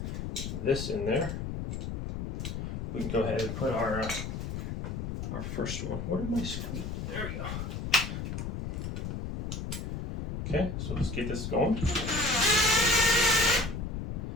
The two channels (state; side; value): noise; left; rumble, 4 dB below the sound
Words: this in there, we can go ahead and put our first one. Where did my screw? There we go. Okay, so let's get this going.